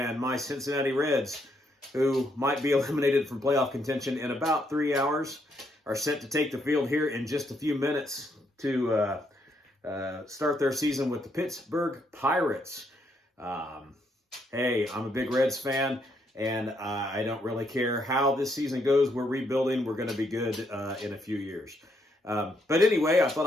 my Cincinnati Reds, who might be eliminated from playoff contention in about 3 hours, are set to take the field here in just a few minutes to start their season with the Pittsburgh Pirates. Hey, I'm a big Reds fan. And I don't really care how this season goes. We're rebuilding. We're going to be good in a few years. But anyway, I thought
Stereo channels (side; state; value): both; normal; correlation 0.74